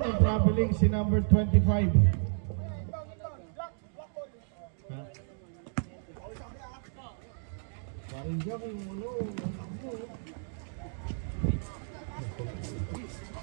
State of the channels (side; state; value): left; silent; digital silence